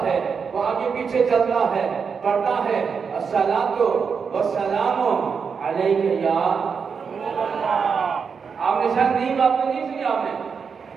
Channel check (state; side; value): quieter; left; 6.0 dB